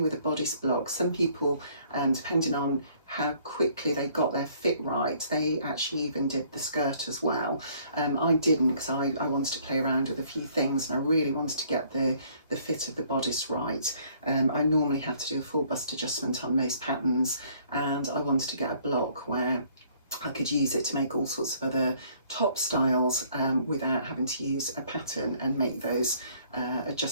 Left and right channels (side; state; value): both; inverted; correlation -0.61